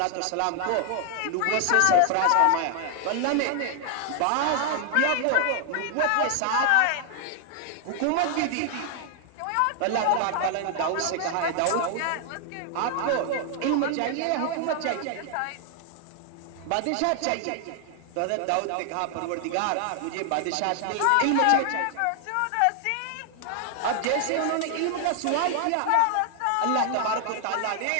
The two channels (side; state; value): both; different; correlation 0.00